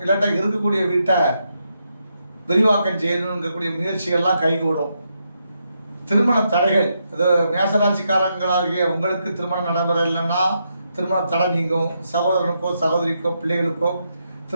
இல்லாட்ட இருக்கக்கூடிய வீட்டை விரிவாக்கம் செய்யணுங்கக்கூடிய முயற்சிகள்லாம் கைகூடும். திருமண தடைகள், அது மேசராசிக்காரங்களாகிய உங்களுக்கு திருமணம் நடைபெறலைன்னா திருமண தடை நீங்கும். சகோதரனுக்கோ சகோதரிக்கோ பிள்ளைகளுக்கோ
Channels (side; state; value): both; inverted; correlation -0.81